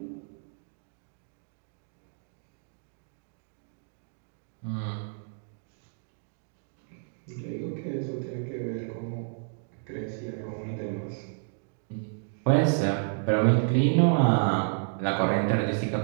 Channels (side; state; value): left; silent; 57 dB below the other